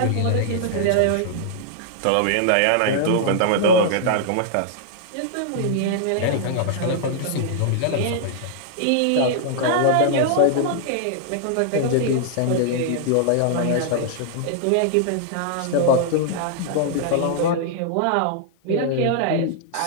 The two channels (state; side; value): different; both; correlation -0.01